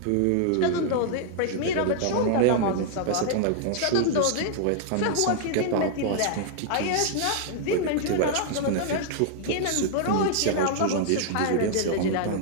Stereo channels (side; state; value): both; different; correlation -0.01